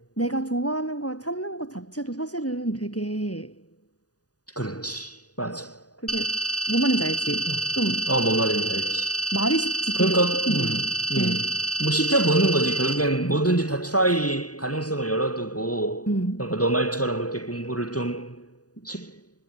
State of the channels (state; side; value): late; right; 0.68 ms